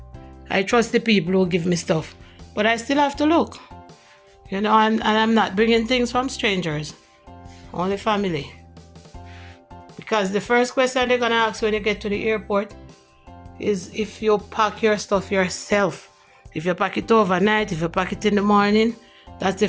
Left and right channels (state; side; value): identical; both; correlation 1.00